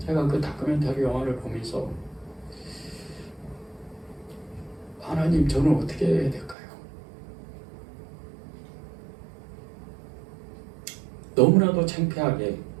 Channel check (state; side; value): drops out; left; at 6.6 s